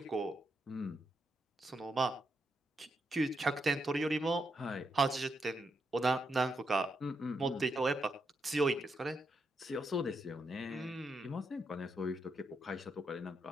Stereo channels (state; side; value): normal; both; correlation 0.82